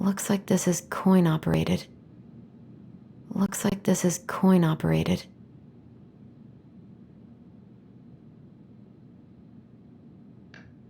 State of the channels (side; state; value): both; identical; correlation 1.00